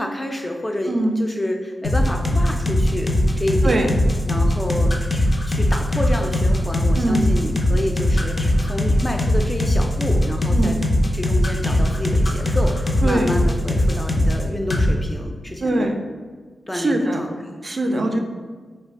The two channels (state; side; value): normal; both; correlation 0.90